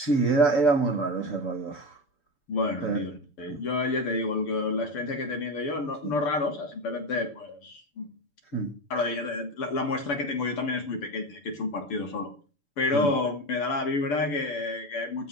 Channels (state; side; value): late; right; 6.9 ms